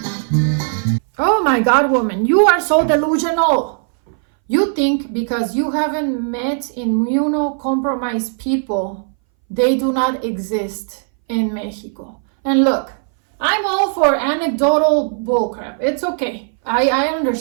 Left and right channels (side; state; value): left; silent; 63 dB below the other